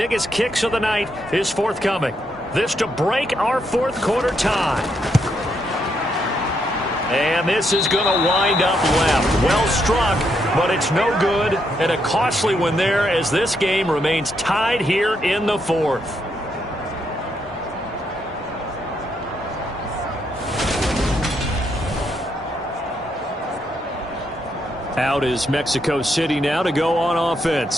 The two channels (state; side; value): normal; both; correlation 0.78